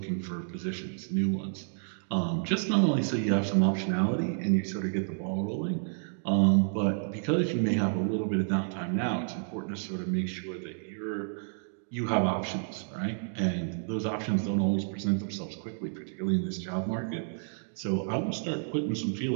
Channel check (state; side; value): silent; left; digital silence